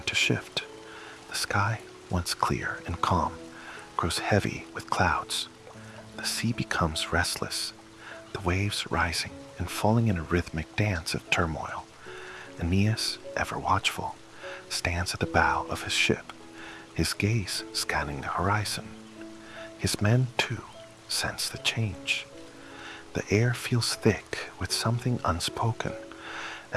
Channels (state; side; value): identical; both; correlation 1.00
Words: to shift. The sky, once clear and calm, grows heavy with clouds. The sea becomes restless, the waves rising and falling in a rhythmic dance of turmoil. Aeneas, ever watchful, stands at the bow of his ship, his gaze scanning the horizon. His men, too, sense the change. The air feels thick with something unspoken,